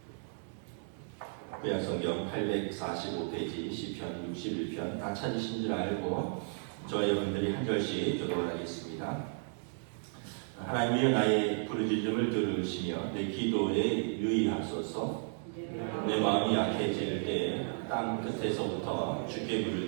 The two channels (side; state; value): left; silent; digital silence